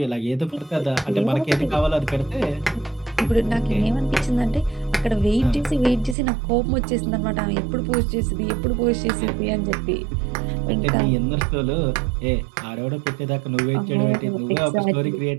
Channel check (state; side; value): drops out; left; at 6.2 s